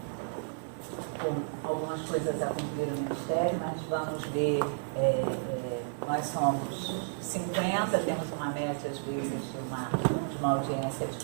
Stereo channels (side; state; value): left; silent; digital silence